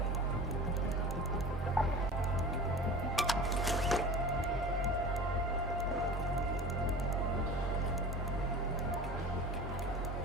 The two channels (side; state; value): both; normal; correlation 0.37